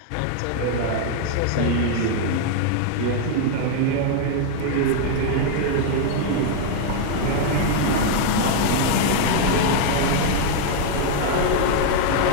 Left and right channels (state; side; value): different; both; correlation 0.00